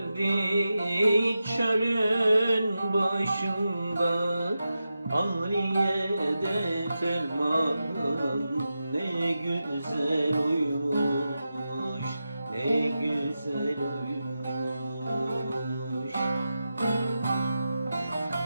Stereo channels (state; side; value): inverted; both; correlation -0.91